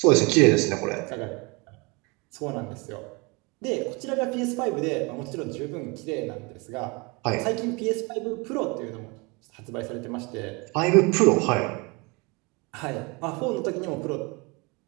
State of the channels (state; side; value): quieter; left; 27.9 dB